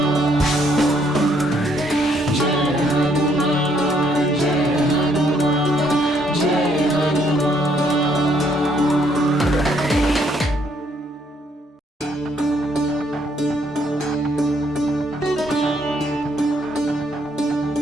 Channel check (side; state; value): both; normal; correlation 0.69